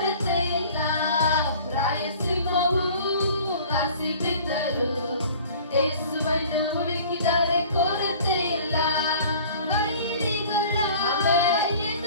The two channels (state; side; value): inverted; both; correlation -0.48